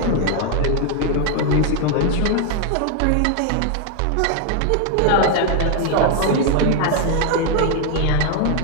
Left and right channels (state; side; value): different; both; correlation 0.01